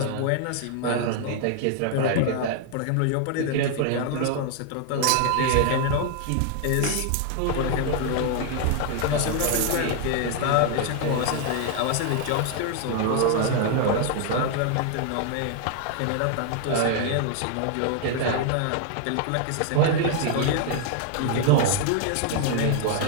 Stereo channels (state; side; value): different; both; correlation 0.00